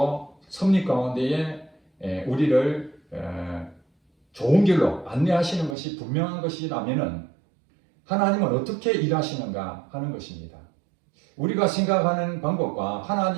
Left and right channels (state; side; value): drops out; left; at 5.8 s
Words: 섭리 가운데에 우리를 좋은 길로 안내하시는 것이 분명한 것이라면 하나님은 어떻게 일하시는가 하는 것입니다. 우리가 생각하는 방법과